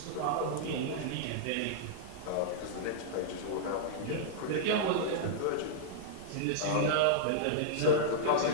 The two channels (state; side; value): different; both; correlation -0.02